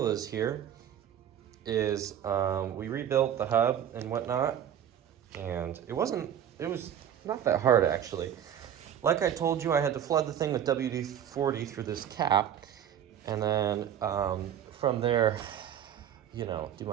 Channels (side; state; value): left; quieter; 9.7 dB